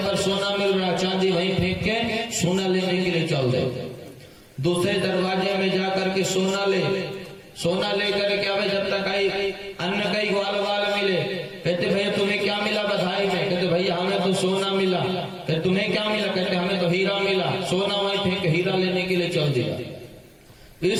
पर सोना मिल रहा, चांदी वहीं फेंक के सोना लेने के लिए चल दे। दूसरे दरवाजे में जाकर के सोना लेकर के आवे, जब तक आई अन्न कई ग्वाल बाल मिले। कहते भैया तुम्हें क्या मिला बधाई में? कहते भैया हमें तो सोना मिला। कहते तुम्हें क्या मिला? कहते हमें तो हीरा मिला। सोना वहीं फेंक हीरा लेने के लिए चल दिया।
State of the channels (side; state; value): both; identical; correlation 1.00